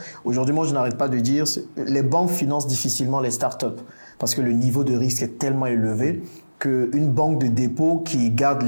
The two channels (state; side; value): inverted; both; correlation -1.00